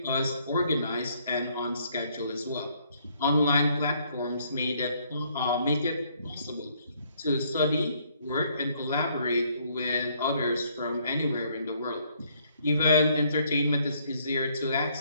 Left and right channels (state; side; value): inverted; both; correlation -0.67